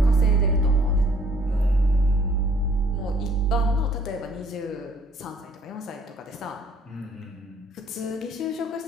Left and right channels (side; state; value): both; normal; correlation 0.59